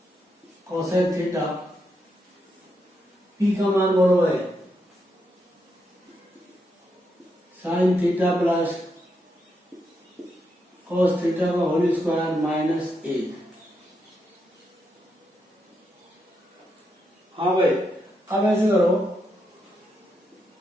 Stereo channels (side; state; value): both; normal; correlation 0.82